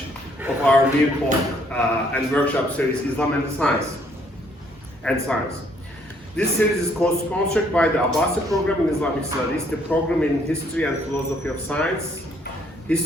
of our new talk and workshop series, Islam and Science. This series is co-sponsored by the Abbasi Program in Islamic Studies, the Program in History and Philosophy of Science,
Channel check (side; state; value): both; normal; correlation 0.66